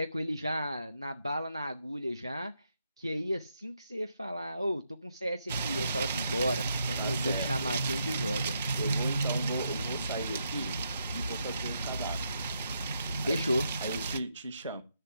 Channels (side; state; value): both; inverted; correlation -0.79